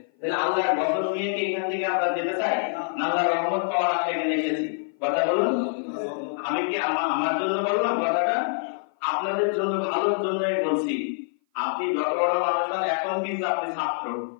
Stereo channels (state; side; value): silent; right; 56 dB below the other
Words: তাহলে আল্লাহর বদল নিয়ে কি এখান থেকে আমরা যেতে চাই? আল্লাহর রহমত পাওয়ার আশা এখানে এসেছি। কথা বলুন। আমি কি আমার জন্য বললাম কথাটা? আপনাদের জন্য, ভালোর জন্যই বলছি। আপনি যত বড় মানুষ হন, এখন কিন্তু আপনি ছাত্র,